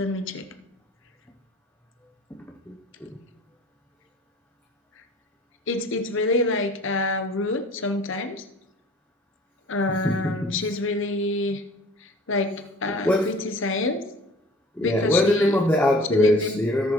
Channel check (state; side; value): normal; both; correlation 0.48